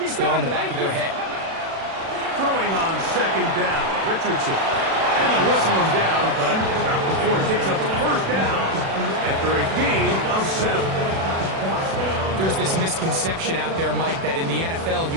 still in the back of their head. Throwing on 2nd down, Richardson. And they'll whistle him down, but not before it picks up a 1st down after a gain of 7. There's this misconception out there, Mike, that in the NFL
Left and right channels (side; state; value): left; late; 36 ms